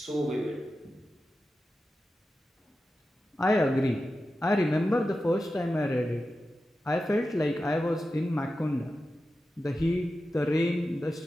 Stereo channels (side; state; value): both; normal; correlation 0.92